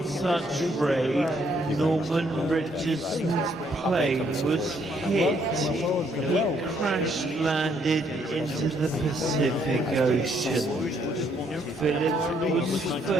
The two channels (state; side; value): normal; both; correlation 0.70